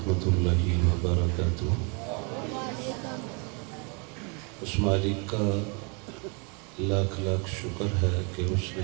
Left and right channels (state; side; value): quieter; left; 33.8 dB